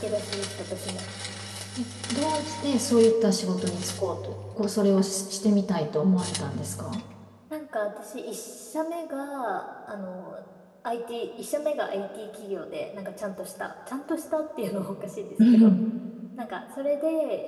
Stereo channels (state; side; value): identical; both; correlation 1.00